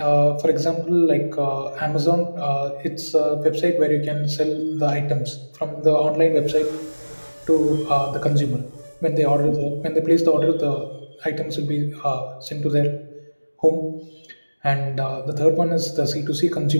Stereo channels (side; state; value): both; inverted; correlation -1.00